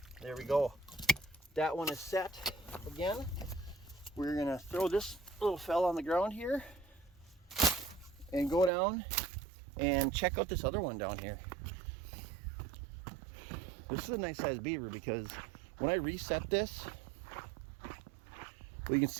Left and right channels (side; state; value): left; drops out; at 8.7 s